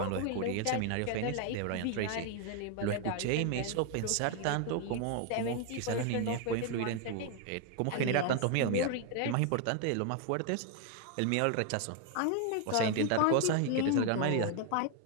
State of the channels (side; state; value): both; different; correlation 0.01